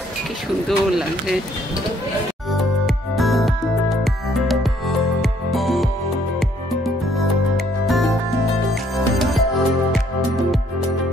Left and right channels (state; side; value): normal; both; correlation 0.65